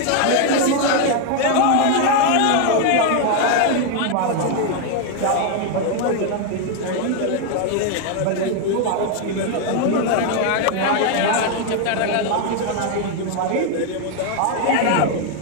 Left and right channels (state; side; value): different; both; correlation 0.01